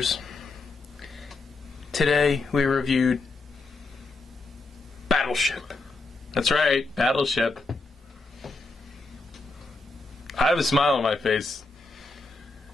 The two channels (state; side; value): quieter; right; 3.4 dB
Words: Today we reviewed Battleship. That's right, Battleship. I have a smile on my face.